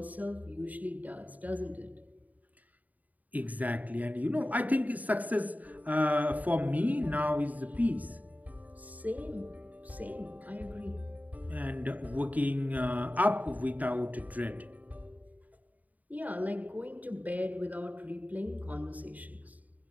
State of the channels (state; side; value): late; left; 0.076 ms